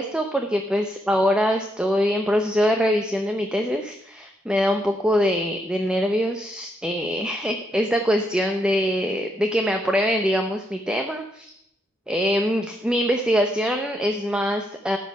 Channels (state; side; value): normal; both; correlation 0.78